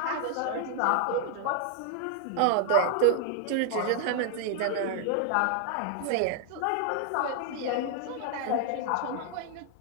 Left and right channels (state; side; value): different; both; correlation 0.00